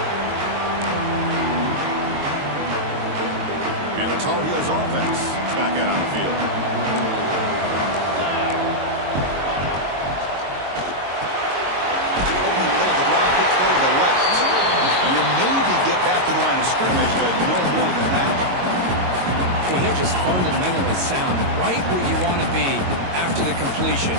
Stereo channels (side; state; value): left; late; 22 ms